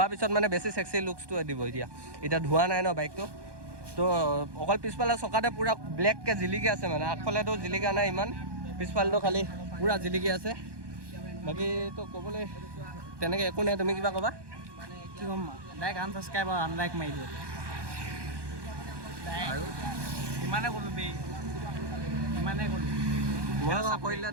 পিছত মানে বেছি চেক্সি লুকছটো দিব এতিয়া ধোৱা নাই ন বাইকটো তো অকল পিছফালে চকাতে পূৰা ব্লেককৈ জিলিকি আছে মানে, আগফালেতো জিলিকা নাই ইমান, পিছফালেতো খালি পূৰা জিলিকি আছে। বাকীতো ক'বলৈ তেনেকৈ একো নাই, তুমি কিবা ক'বা? কি ক'ম, ডাইৰেক্ট আনছাবস্ক্ৰাইব আৰু আনলাইক মাৰি দিওঁ আৰু ইমানে ক'লোঁ বেই, ইমানে ক'লোঁ। মই কৰিলে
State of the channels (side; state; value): left; late; 1.2 ms